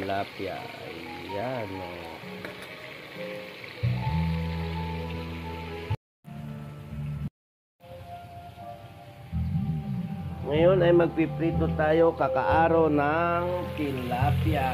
Ayan o. Ngayon ay magpiprito tayo kakaaro ng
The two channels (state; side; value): identical; both; correlation 1.00